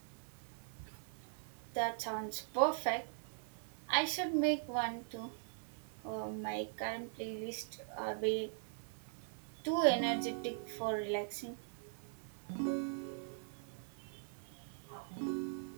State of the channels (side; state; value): left; silent; 50 dB below the other